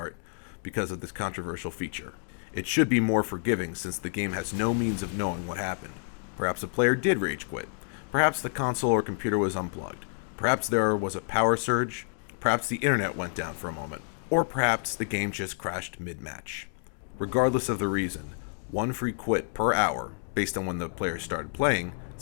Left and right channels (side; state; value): right; silent; digital silence